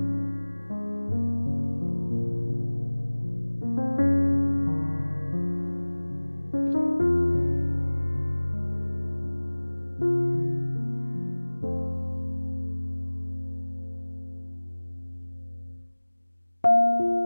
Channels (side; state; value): both; inverted; correlation -1.00